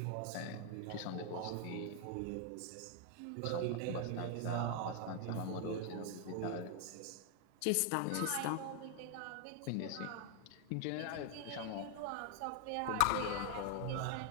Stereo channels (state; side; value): different; both; correlation 0.00